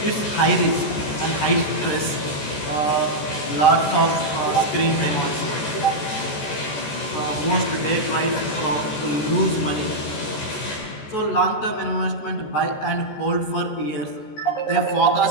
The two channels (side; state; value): right; late; 14 ms